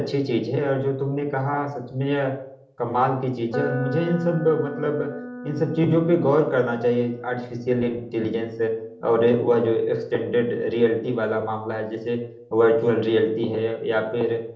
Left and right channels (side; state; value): both; identical; correlation 1.00